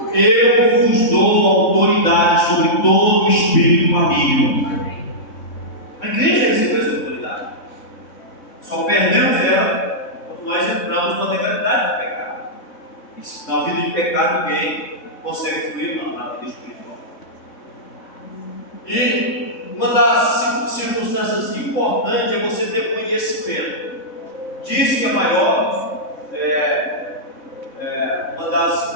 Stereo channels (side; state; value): right; late; 3.6 ms